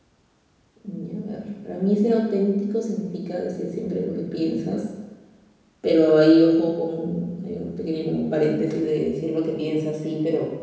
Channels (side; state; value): both; identical; correlation 1.00